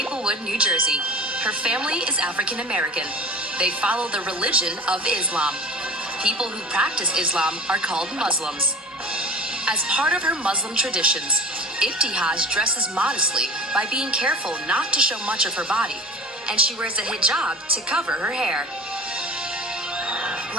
New Jersey. Her family is African American. They follow the religion of Islam. People who practice Islam are called Muslims. As part of her Muslim traditions, Ibtihaj dresses modestly by being careful not to show much of her body, and she wears a hijab to cover her hair.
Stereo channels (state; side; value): normal; both; correlation 0.39